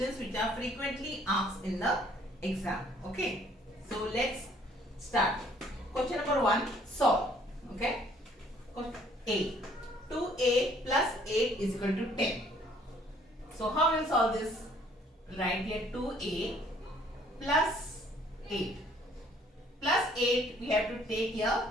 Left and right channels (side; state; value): both; normal; correlation 0.61